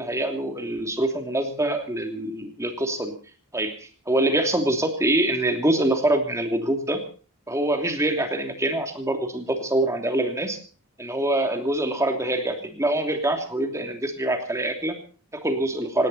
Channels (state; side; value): normal; both; correlation 0.44